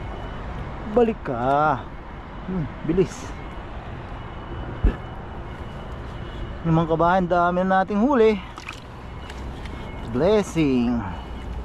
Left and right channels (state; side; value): identical; both; correlation 1.00